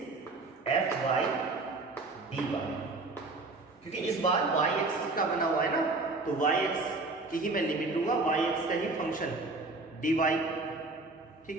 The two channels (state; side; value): quieter; left; 3.4 dB